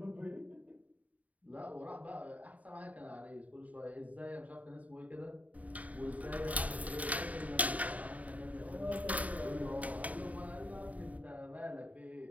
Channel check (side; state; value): left; late; 0.071 ms